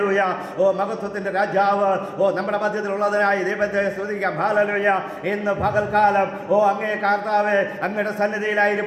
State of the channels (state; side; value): identical; both; correlation 1.00